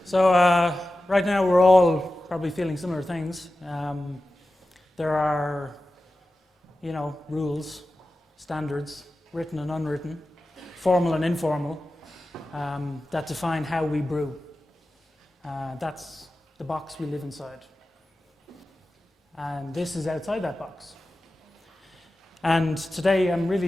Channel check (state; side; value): normal; both; correlation 0.94